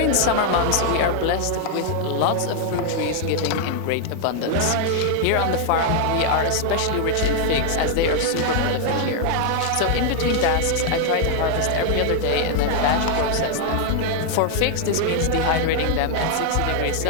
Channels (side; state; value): both; different; correlation 0.00